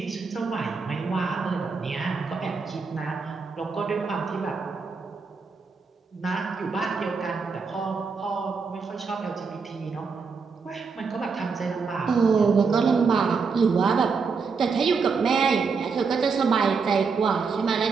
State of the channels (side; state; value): left; quieter; 5.1 dB